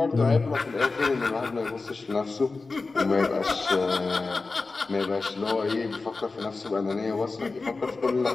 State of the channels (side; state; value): right; quieter; 3.8 dB